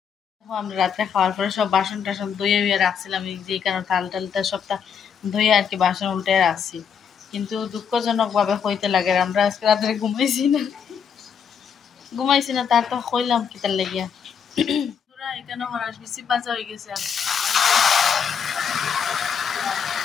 আমরা রাত্রে খাওয়ার পরে সব বাসন টাসন ধুয়ে উয়ে রাখছিলাম যে কারণে থাল টালটা সবটা ধুয়ে আর কি বাসন উল্টে রাখছি কিন্তু দুঃখজনকভাবে হইতে লাগে আমরা আজকে রাত্রে ঘুমাইছি না তার তো কইলাম কি তার লাগিয়া তোরা এখানে হরাস বেশি বাজা হয়ে গেছে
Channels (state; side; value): quieter; right; 7.1 dB